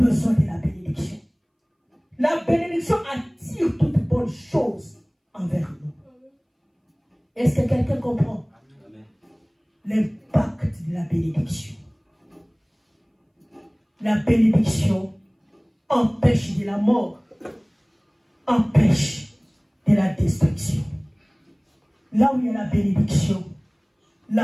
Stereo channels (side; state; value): both; identical; correlation 1.00